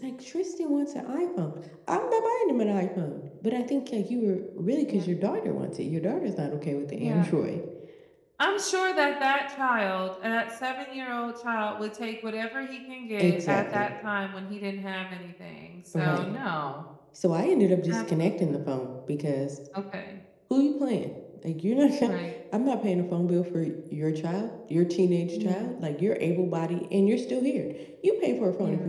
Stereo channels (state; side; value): identical; both; correlation 1.00